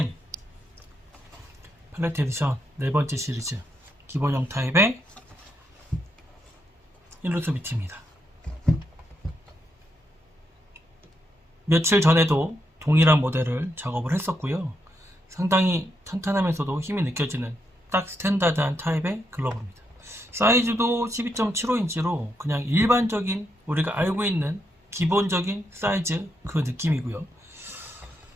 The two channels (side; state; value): both; normal; correlation 0.80